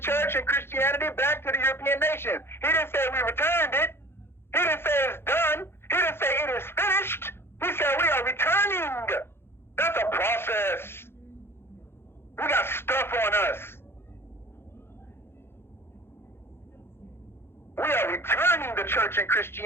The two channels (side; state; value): right; late; 0.11 ms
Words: and Christianity back to the European nations. He didn't say we returned it. He didn't say it's done. He didn't say it is finished. He said we are returning. That's a process. We got stuff on us. We are returning the church and